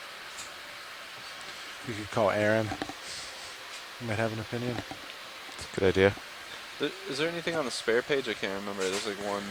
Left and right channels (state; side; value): identical; both; correlation 1.00